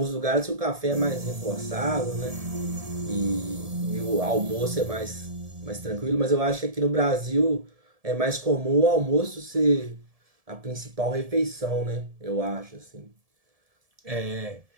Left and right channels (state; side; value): late; left; 1.7 ms